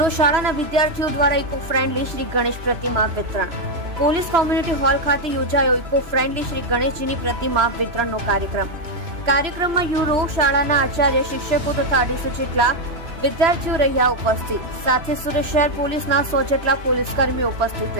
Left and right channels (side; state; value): left; late; 3.1 ms